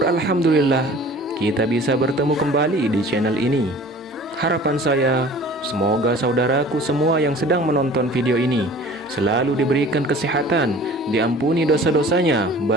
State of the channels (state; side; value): normal; both; correlation 0.45